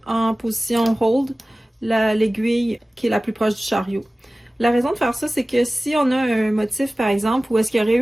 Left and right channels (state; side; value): normal; both; correlation 0.97